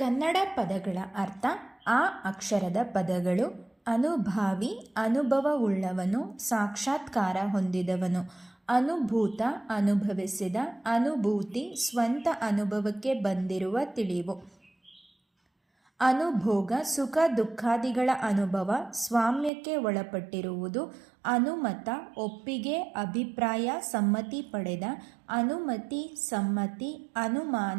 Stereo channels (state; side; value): drops out; left; at 19.5 s